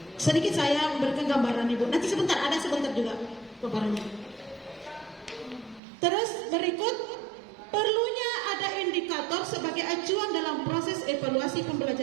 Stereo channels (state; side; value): drops out; left; at 5.8 s